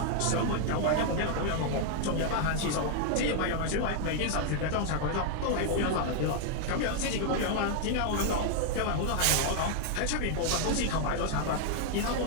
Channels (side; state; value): both; different; correlation 0.00